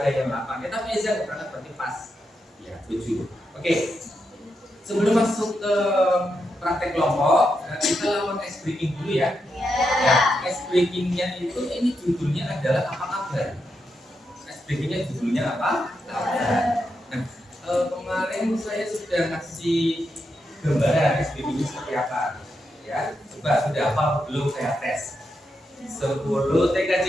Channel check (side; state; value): both; normal; correlation 0.84